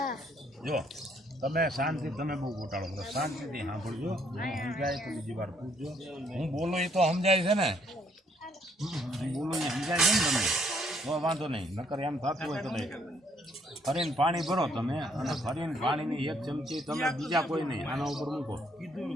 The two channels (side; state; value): both; normal; correlation 0.67